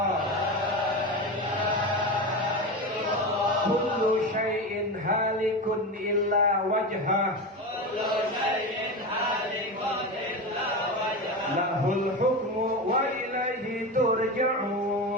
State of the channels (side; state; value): both; normal; correlation 0.22